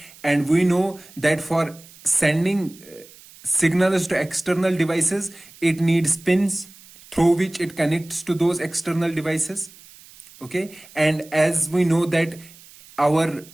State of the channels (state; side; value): noise; right; hiss, 22 dB below the sound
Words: and we know that for sending signals to external devices, it needs pins through which it connects to those external devices. Okay, and as we know that our